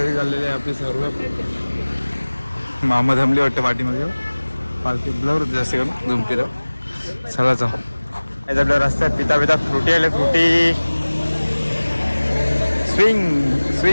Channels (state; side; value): inverted; both; correlation -1.00